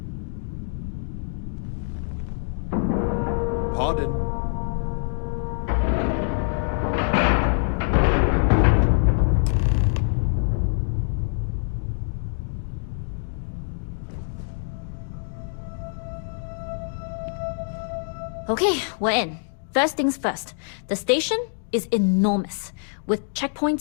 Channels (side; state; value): right; silent; digital silence